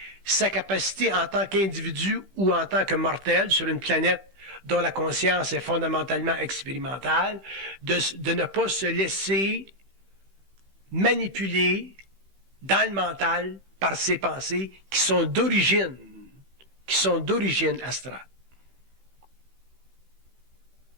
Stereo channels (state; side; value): late; left; 15 ms